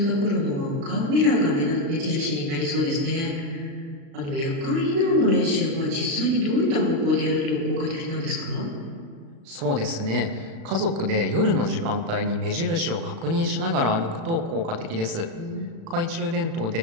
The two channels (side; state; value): left; late; 36 ms